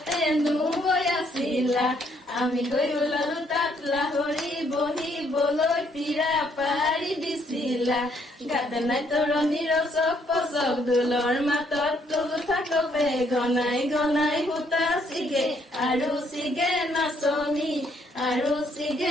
নৈ আছিলা আমি গৈ ওলালো তাত লাহৰি বহিবলৈ পিৰা পাৰি দিছিলা গাতে নাই তৰণিৰ চক পচক দোলৰ মাতত তোলো থাকবে গনাই গনাই সূতা চিগে আৰু চিগে নাচনি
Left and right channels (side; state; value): both; normal; correlation 0.69